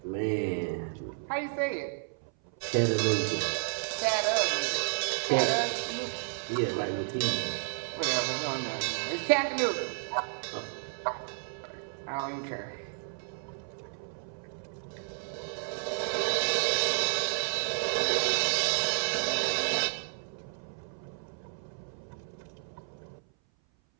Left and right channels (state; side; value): silent; left; 57 dB below the other